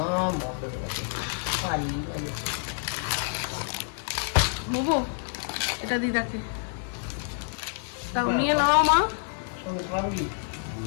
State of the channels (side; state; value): right; silent; digital silence